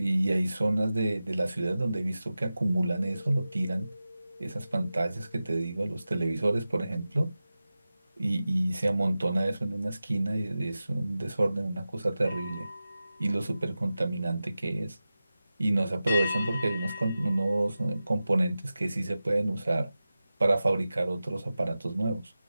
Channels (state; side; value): inverted; both; correlation -0.94